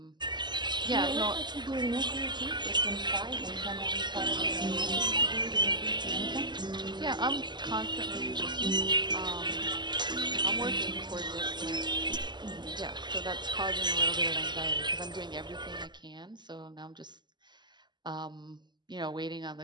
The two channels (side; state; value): left; late; 0.21 ms